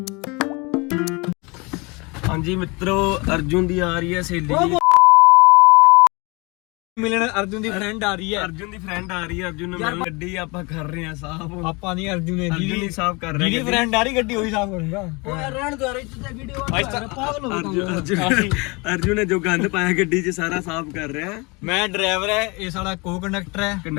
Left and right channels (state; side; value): quieter; right; 27.5 dB